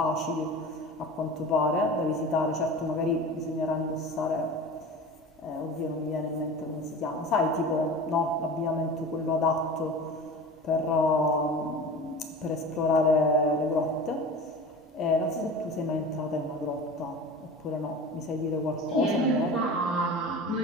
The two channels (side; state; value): both; normal; correlation 0.35